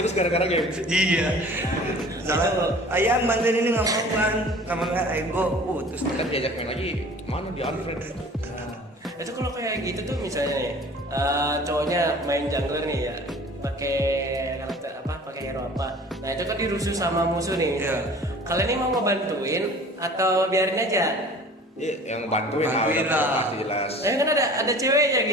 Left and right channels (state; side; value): normal; both; correlation 0.45